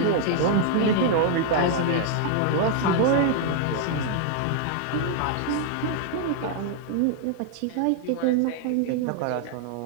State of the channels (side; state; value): both; different; correlation 0.00